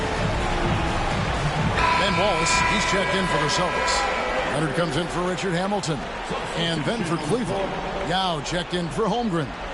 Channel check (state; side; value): identical; both; correlation 1.00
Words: Ben Wallace, he's checked in for the Celtics. Leonard comes in for Richard Hamilton. And then for Cleveland, Yao checked in for Holmgren.